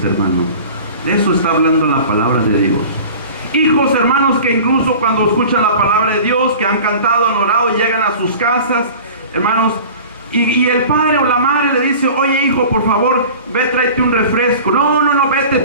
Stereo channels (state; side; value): inverted; both; correlation -0.40